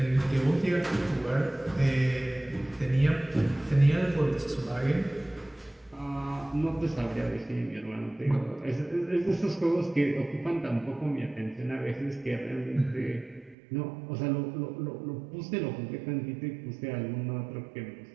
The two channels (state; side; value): drops out; left; at 13.6 s